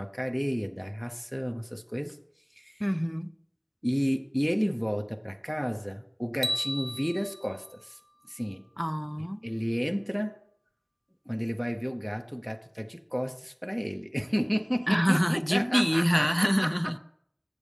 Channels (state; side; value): identical; both; correlation 1.00